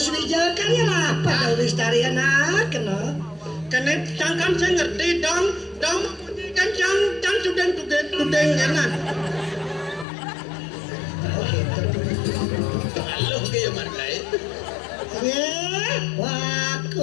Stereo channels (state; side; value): drops out; right; at 10.1 s